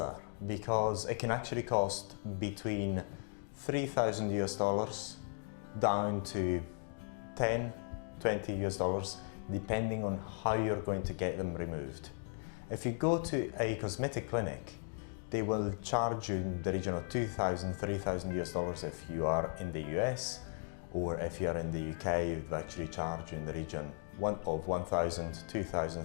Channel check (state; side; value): silent; right; 53 dB below the other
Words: because it can actually cost between $3,000 down to $10–20 depending on how you're going to get them removed. If you go to a cosmetic clinic, they will charge you in the region of $2,000–3,000 if you are in the US, or if you are in the UK, they'll actually charge you in the region of £1,000, £2,000,